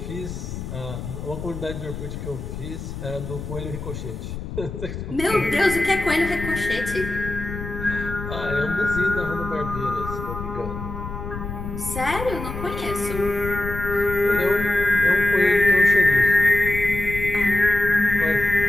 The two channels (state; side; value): noise; left; rumble, 8 dB below the sound